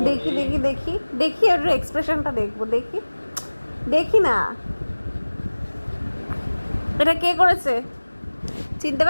দেখি দেখি দেখি দেখি এর এক্সপ্রেশনটা দেখবো, দেখি দেখি না। এটা কে করেছে চিনতে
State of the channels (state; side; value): inverted; both; correlation -1.00